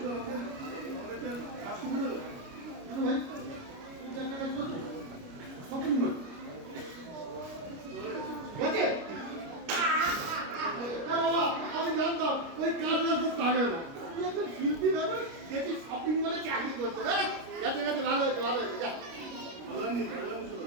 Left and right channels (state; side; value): late; left; 29 ms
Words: কেন ভাই তুমি চারটা কাজ করছো শপিং মল গেছে আমি জানতাম ওই কাজ রাখতে পারে না তুই একজন শিল্পী মানুষ যেটি শপিং মলে চাকরি করতে গেছে গেছে ভালো হয়েছে ভালো হয়েছে যা ভালো হয়নি